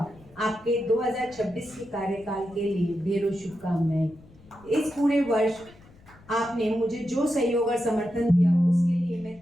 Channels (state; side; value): noise; left; rumble, 25 dB below the sound